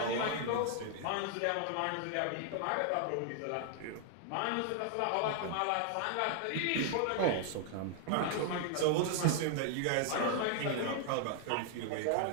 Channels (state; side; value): different; both; correlation 0.00